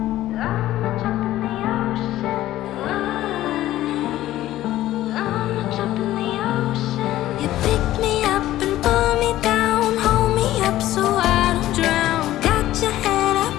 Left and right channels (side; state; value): right; quieter; 14.5 dB